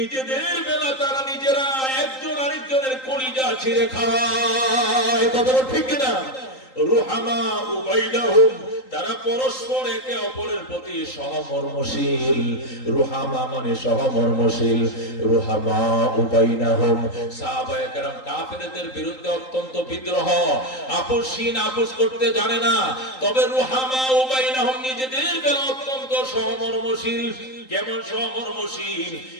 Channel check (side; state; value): right; late; 3.8 ms